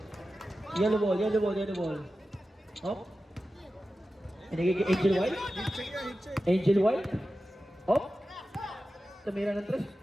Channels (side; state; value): both; normal; correlation 0.93